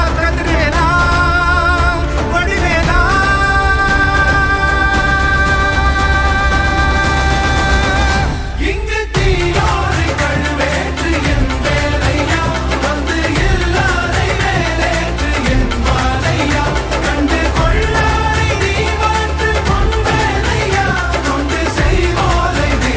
கதிர்வேலா வடிவேலா, இங்கு தீயோரை கழுவேற்று என் வேலையா, வந்து எல்லாரை வேலேற்று என் வாழையா, கண்டு கொள்ளாரை நீ மாற்று பொன் வேலையா, கொண்டு செய்வோரை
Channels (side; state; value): both; identical; correlation 1.00